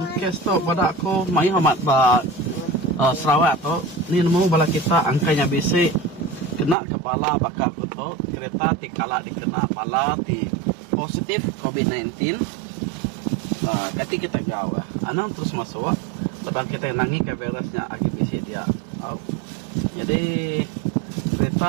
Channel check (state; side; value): drops out; left; at 6.8 s